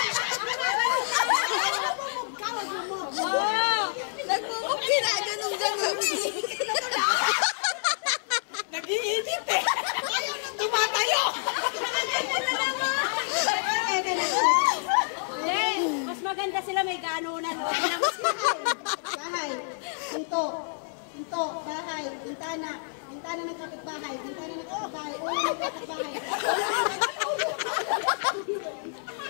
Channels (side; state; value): right; silent; digital silence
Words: Nagmumog ginaganon-ganon eh. Nag-iinit eh. Ayaw nang tumatayo. Mas maganda sila may ganunan. Bahay. Pinto. Pinto. Bahay. Bintana. Bintana ng kapitbahay. Bintana ng kapitbahay. Ulo ng kapitbahay.